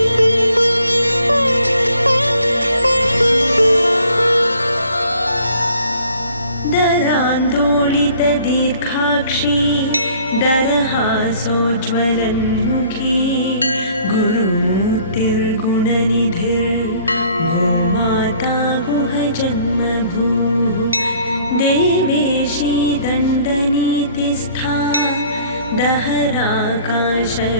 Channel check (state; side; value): inverted; both; correlation -0.56